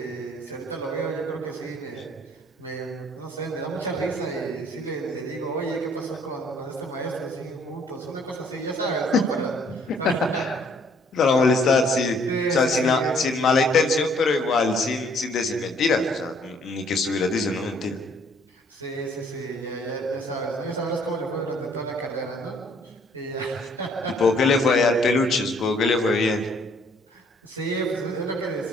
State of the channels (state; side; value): normal; both; correlation 0.62